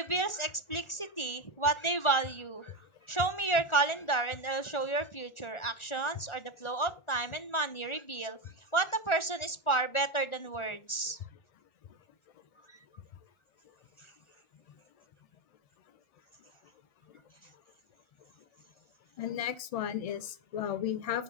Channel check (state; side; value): late; right; 1.4 ms